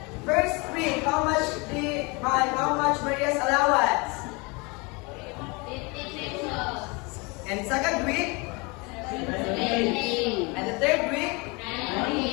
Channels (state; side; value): quieter; right; 28.4 dB